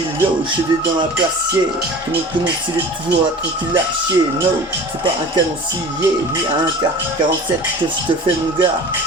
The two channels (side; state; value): both; normal; correlation 0.39